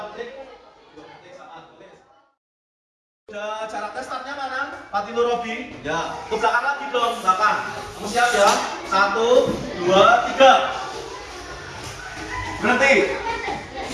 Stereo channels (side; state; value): both; identical; correlation 1.00